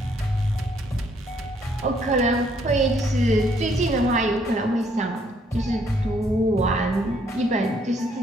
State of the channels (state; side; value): normal; both; correlation 0.68